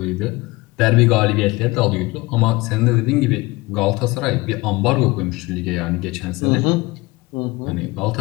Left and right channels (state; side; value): quieter; right; 22.2 dB